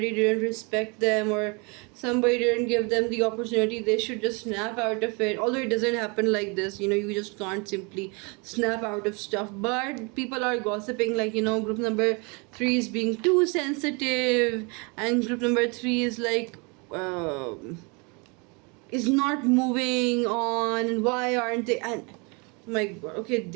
didn't respect them, or somebody didn't give them the opportunity, they should just snap out of it. Although it doesn't happen like this, you just can't simply snap out of stuff, but people are gossiping like group number 3 is being too sensitive, and group number 3 is like is not moving on, and why aren't they? And oh my god, okay,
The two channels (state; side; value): quieter; left; 30.9 dB